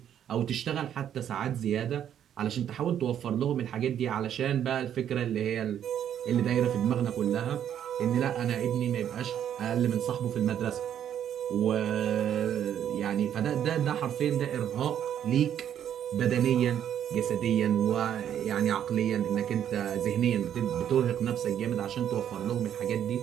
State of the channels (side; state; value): left; quieter; 9.8 dB